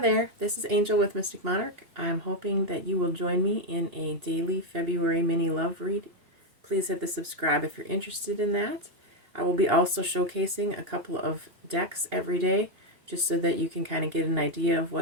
this is Angel with Mystic Monarch. I'm hoping that you will join me in a daily February mini love read. Please hit the subscribe if you're interested in that. I will be also showcasing a couple of decks every day just so that you can kind of get an idea of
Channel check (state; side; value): late; left; 2.8 ms